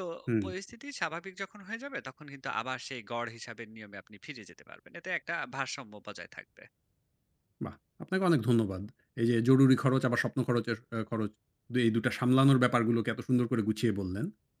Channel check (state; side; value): identical; both; correlation 1.00